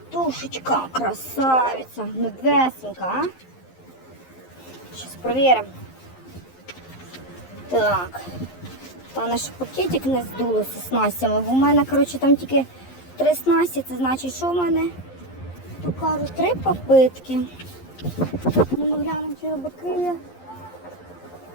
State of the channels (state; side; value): late; right; 11 ms